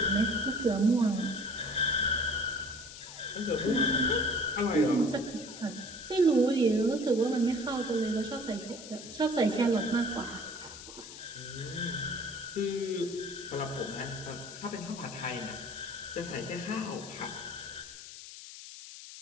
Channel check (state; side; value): noise; left; hiss, 13 dB below the sound